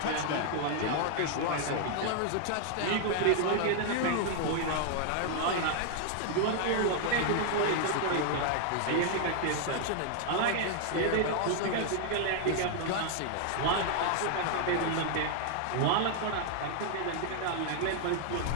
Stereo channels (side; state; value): both; different; correlation -0.01